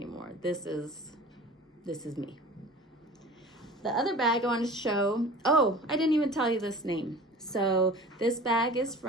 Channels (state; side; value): normal; both; correlation 0.40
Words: This is me. The other bag I wanted to show, oh, I didn't even tell you this name. So this bag is